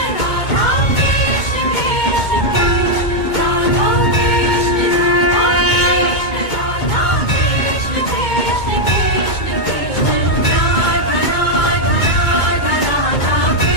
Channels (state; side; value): late; right; 2.2 ms